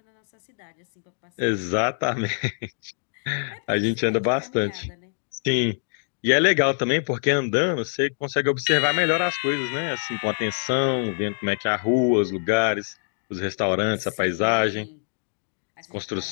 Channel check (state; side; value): silent; right; digital silence